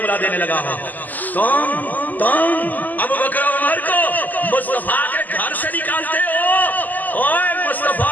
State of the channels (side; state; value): right; late; 0.084 ms